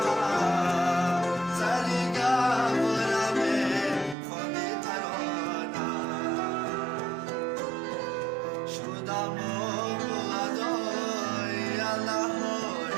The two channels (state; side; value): drops out; left; at 4.2 s